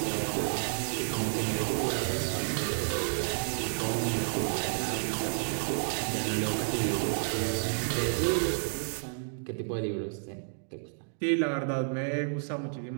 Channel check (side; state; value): left; silent; digital silence